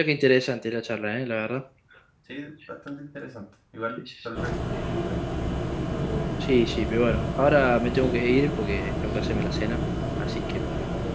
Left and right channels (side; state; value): both; identical; correlation 1.00